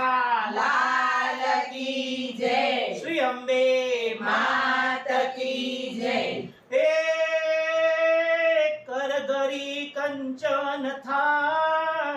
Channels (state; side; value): identical; both; correlation 1.00